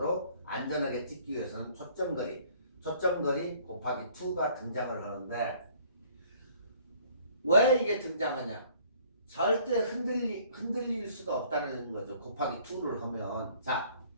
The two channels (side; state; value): both; inverted; correlation -0.57